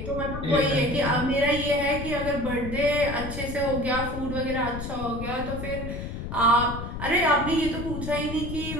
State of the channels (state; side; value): noise; left; rumble, 7 dB below the sound